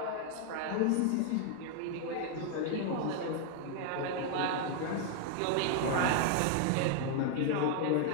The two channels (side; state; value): both; different; correlation 0.00